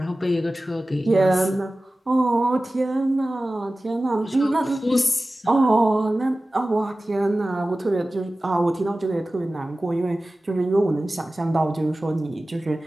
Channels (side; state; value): both; normal; correlation 0.96